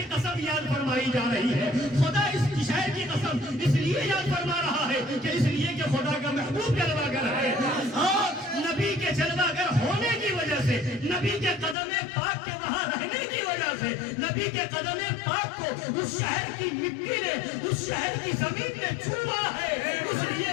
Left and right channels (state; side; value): drops out; right; at 11.8 s